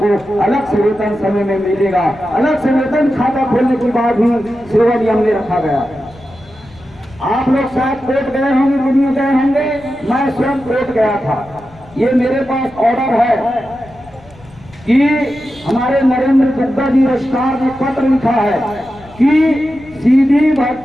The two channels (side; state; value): left; noise; rumble, 23 dB below the sound